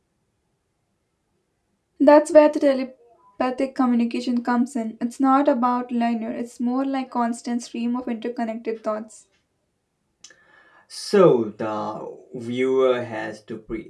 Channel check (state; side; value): identical; both; correlation 1.00